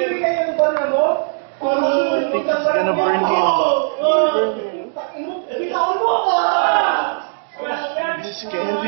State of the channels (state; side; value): silent; left; digital silence